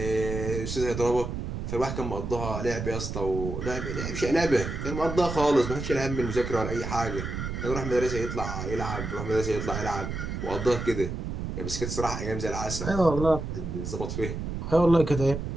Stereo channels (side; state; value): right; noise; rumble, 5 dB below the sound